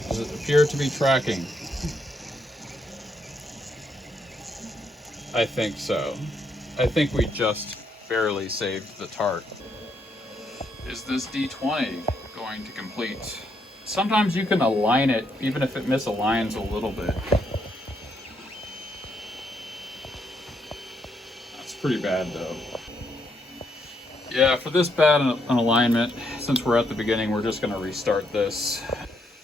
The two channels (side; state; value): both; normal; correlation 0.76